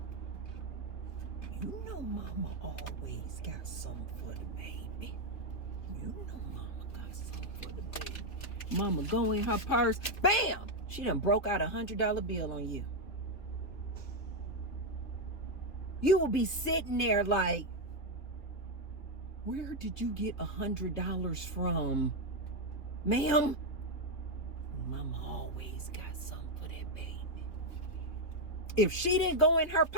You know Mama always got something for the baby. You know Mama got something for the baby. Mama go in her purse, bam! She done broke out $100 bill on you. You will be sitting there like, where did you get $100 from, ma'am? Mama always got something for that baby. If she didn't go in her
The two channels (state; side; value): late; right; 3.0 ms